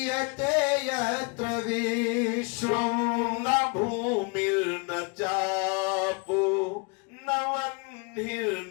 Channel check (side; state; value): right; quieter; 32.2 dB